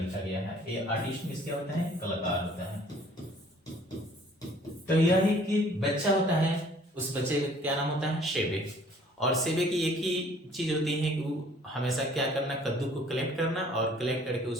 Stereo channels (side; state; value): both; normal; correlation 0.56